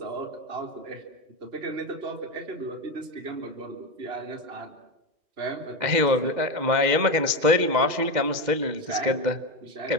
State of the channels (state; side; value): late; left; 2.1 ms